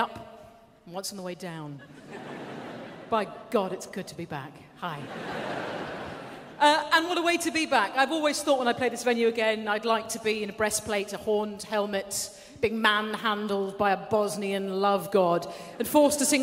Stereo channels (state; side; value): identical; both; correlation 1.00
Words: and once on the way down. By God, it's good to be back. Hi. And what a way to be back. I've always thought when I play this venue again, I'd like to be in a breastplate, a horned helmet, being manhandled by a Bosnian love god, and forced to